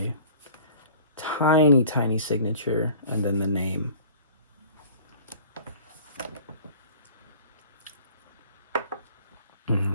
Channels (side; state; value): both; inverted; correlation -0.47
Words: tiny, tiny signature, and then the name.